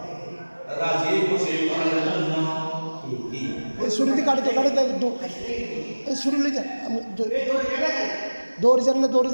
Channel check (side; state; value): both; inverted; correlation -1.00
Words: রাজি খুশি করার জন্য এই ছুরিতে কাটতে এই ছুরি লই যান, দৌড়ি যান